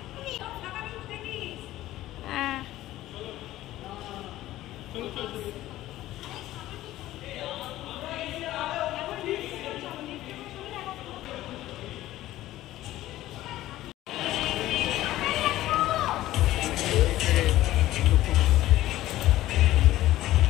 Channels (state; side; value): quieter; right; 15.2 dB